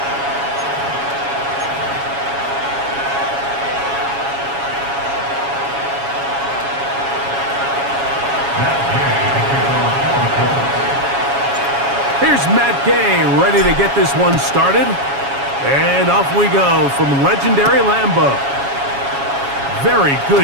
Here's Matt Gay ready to get this one started. And off we go from legendary Lambeau. Very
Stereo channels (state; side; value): late; left; 7.2 ms